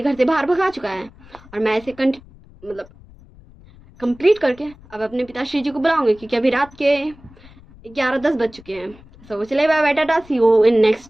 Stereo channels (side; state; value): left; noise; rumble, 24 dB below the sound